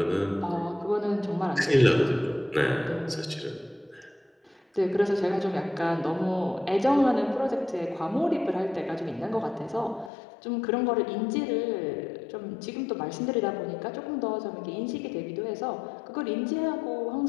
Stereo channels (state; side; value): drops out; right; at 10.1 s